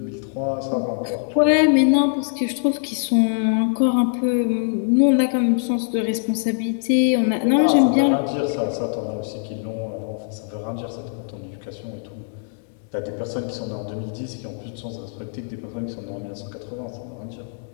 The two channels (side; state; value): right; silent; digital silence